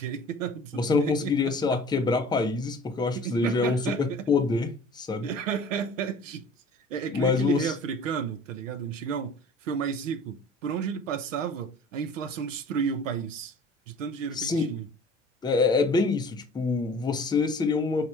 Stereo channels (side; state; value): both; normal; correlation 0.45